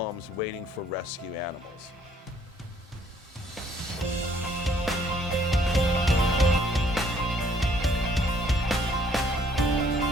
waiting for rescue animals.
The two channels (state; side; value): normal; both; correlation 0.63